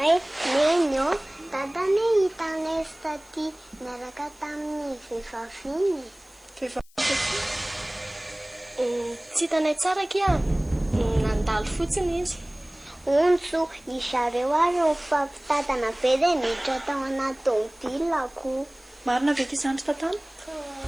nenyo, dadane hitanay taty miaraka tamin'ny vehivavy iny. Tsy hitanay tsara kia, nandalo fotsiny izy. Ontso, izareo ary mifampitadana be dia miditra tao anaty tômôbilako. Marina ve ity zandry tantana?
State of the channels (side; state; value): left; noise; hiss, 29 dB below the sound